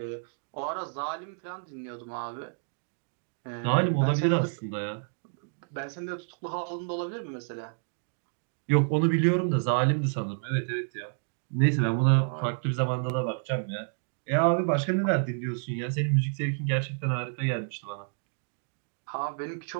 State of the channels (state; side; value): silent; left; digital silence